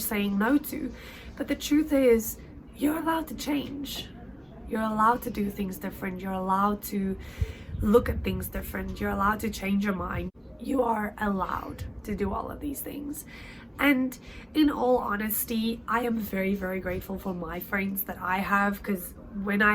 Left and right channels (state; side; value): identical; both; correlation 1.00